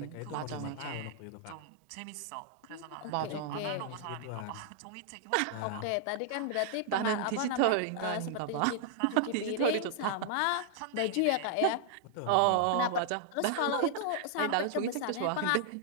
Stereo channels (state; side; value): different; both; correlation -0.01